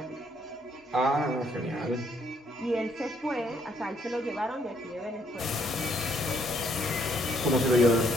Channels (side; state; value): both; normal; correlation 0.69